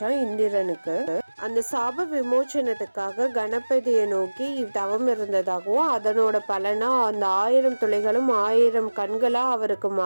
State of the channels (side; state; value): both; inverted; correlation -1.00